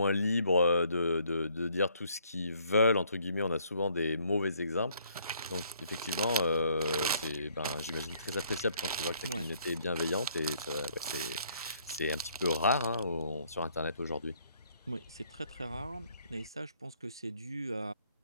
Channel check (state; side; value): inverted; both; correlation -0.66